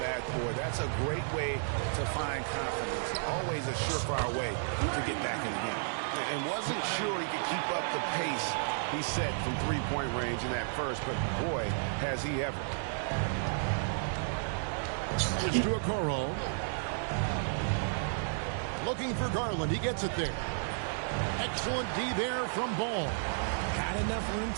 That's a great way to find confidence. Always a surefire way to get back in the game. And wasn't sure he could keep up the pace he set from three-point range in that first, but boy, has he ever. It's to Okoro. Looking for Garland. He gets it there. Excellent D there from Ball. Had enough room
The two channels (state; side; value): silent; left; digital silence